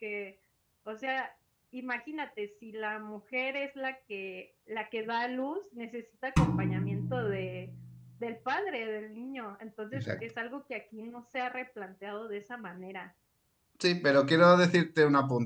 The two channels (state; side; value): identical; both; correlation 1.00